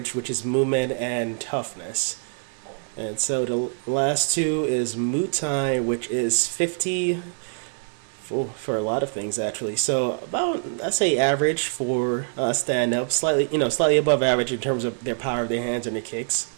which is movement and toughness. And so the last two is Muay Thai, which is 50 for a lot of things actually. So about, I say average for stand-up, slightly above average in terms of their power of their hands and their kicks.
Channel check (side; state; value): left; silent; 62 dB below the other